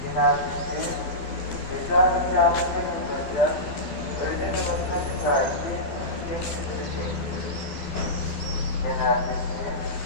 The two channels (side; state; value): right; late; 13 ms